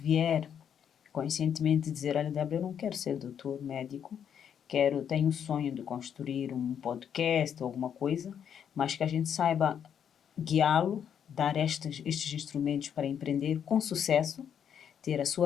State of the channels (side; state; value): right; quieter; 8.4 dB